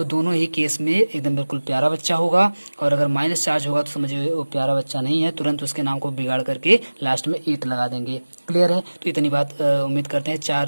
दोनों ही केस में एकदम बिल्कुल प्यारा बच्चा होगा। और अगर माइनस चार्ज होगा तो समझिए वो प्यारा बच्चा नहीं है, तुरंत उसके नाम को बिगाड़ करके लास्ट में 8 लगा देंगे। क्लियर है, तो इतनी बात उम्मीद करते हैं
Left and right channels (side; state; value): both; inverted; correlation -1.00